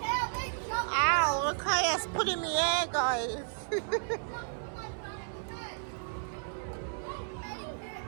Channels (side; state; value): left; silent; 56 dB below the other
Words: Ow, look how it's put in the air, guys.